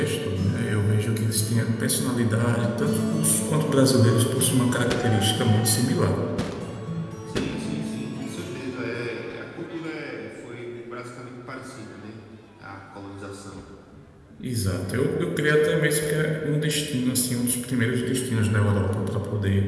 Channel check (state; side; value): identical; both; correlation 1.00